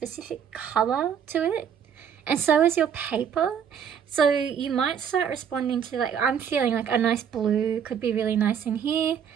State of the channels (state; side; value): quieter; left; 8.0 dB